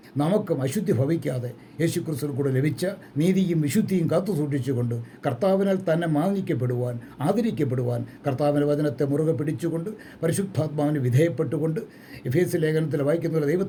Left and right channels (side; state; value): both; identical; correlation 1.00